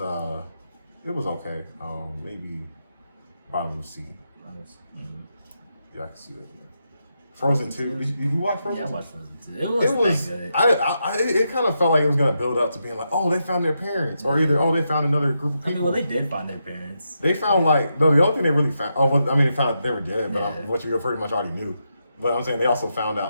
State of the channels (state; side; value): inverted; both; correlation -0.84